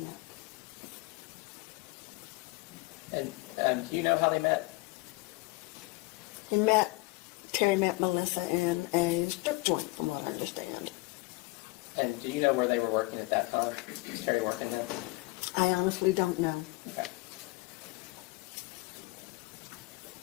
that. And do you know how they met? Terry met Melissa in a strip joint, from what I understand. And do you know where they were working at that time? Was Terry working there? I honestly don't know. Okay.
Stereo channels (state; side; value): quieter; right; 23.6 dB